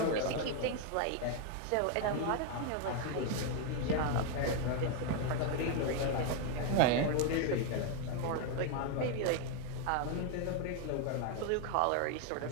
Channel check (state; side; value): different; both; correlation 0.01